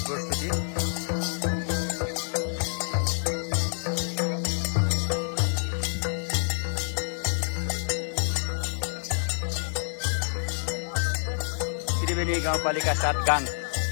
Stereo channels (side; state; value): right; silent; digital silence